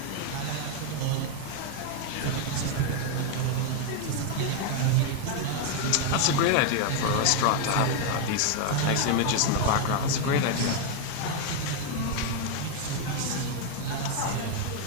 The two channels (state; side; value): different; both; correlation 0.01